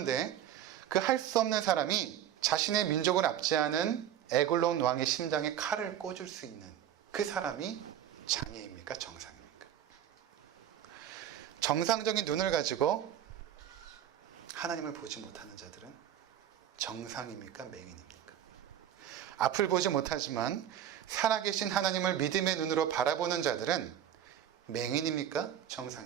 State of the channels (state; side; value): quieter; left; 10.5 dB